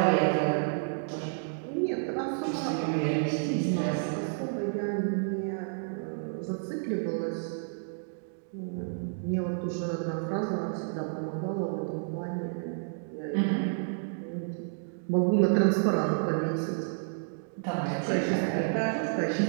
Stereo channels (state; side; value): silent; left; digital silence